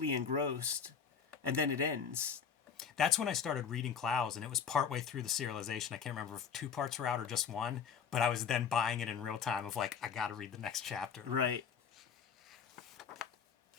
engrossed, and then it ends. That's when I started reading Clowes, and it was partway through the serialization. I can't remember if 2 parts were out or just 1, but I was then buying it in real time of like, I got to read the next chapter. Right.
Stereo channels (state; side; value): quieter; right; 6.9 dB